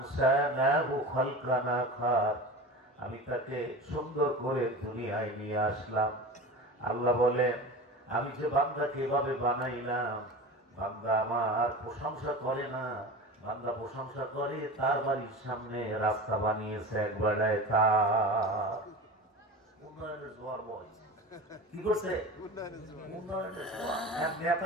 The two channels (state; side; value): normal; both; correlation 0.31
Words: খালকান আখার, আমি তাকে সুন্দর করে দুনিয়ায় নিয়ে আসলাম। আল্লাহ বলেন আমি যে বান্দাকে এভাবে বানাইলাম, বান্দা আমার প্রশংসা করে না, বান্দা প্রশংসা করে তার বাড়ির সামনে রাস্তা বানিয়েছে একবারে, তার উন্নয়নের জোয়ার বইছে। কি করছে? উন্নয়নের জোয়ার। এক